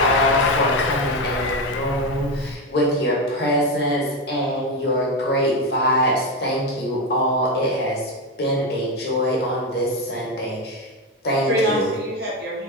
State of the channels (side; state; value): both; normal; correlation 0.12